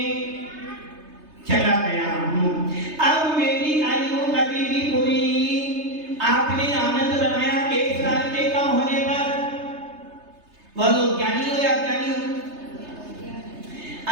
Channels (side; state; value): left; late; 3.3 ms